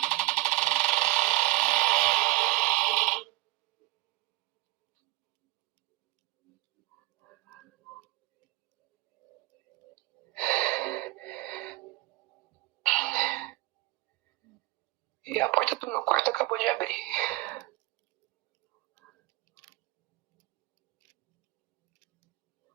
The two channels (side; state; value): left; quieter; 20.8 dB